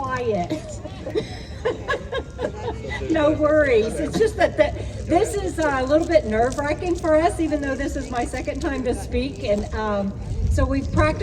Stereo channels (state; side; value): identical; both; correlation 1.00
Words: No worries. It's just that this is a little bit nerve-wracking for us, even though this is my 2nd time to speak. And so we've